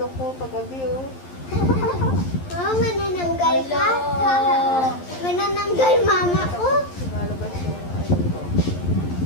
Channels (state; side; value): late; right; 11 ms